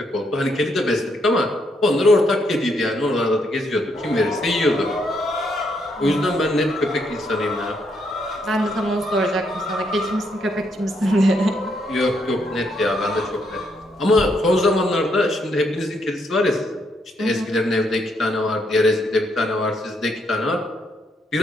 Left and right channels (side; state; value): both; normal; correlation 0.75